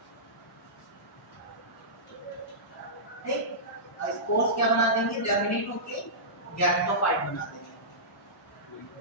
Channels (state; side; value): normal; both; correlation -0.18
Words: ठीक। स्पोर्स क्या बना देंगे? जर्मिनेट होके गैमेटोफाइट बना देंगे,